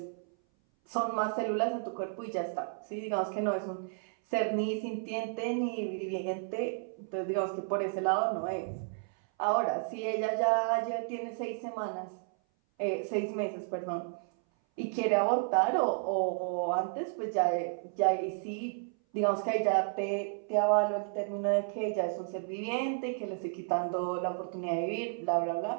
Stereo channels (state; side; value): silent; left; 56 dB below the other